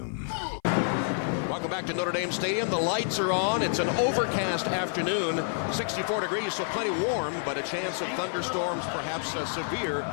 Welcome back to Notre Dame Stadium. The lights are on. It's an overcast afternoon, 64 degrees, so plenty warm, but a chance of thunderstorms, perhaps severe,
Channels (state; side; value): silent; right; 55 dB below the other